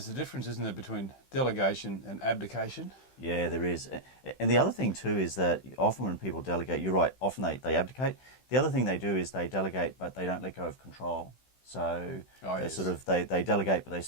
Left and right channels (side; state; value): right; late; 15 ms